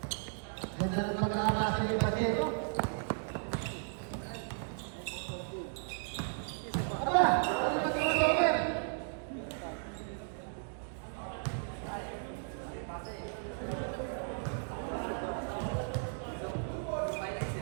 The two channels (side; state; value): left; silent; digital silence